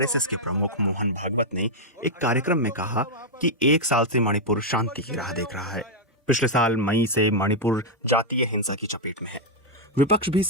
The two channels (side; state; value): both; normal; correlation -0.03